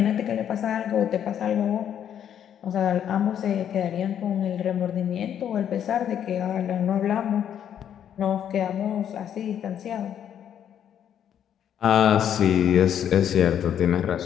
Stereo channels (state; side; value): quieter; right; 9.5 dB